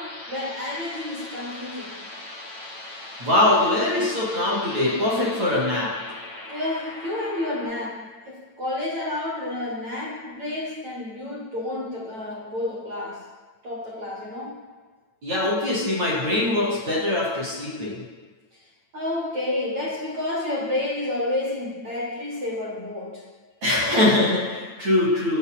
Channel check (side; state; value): left; late; 9.0 ms